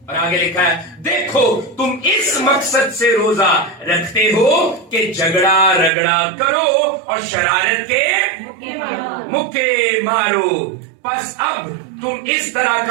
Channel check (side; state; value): left; drops out; at 5.9 s